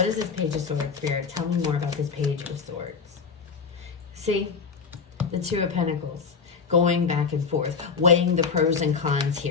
is this Page of Swords, Spirit? Tell me more about this Page of Swords. See, the Two of Pentacles, going back and forth, weighing the pros and cons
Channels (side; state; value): right; quieter; 5.6 dB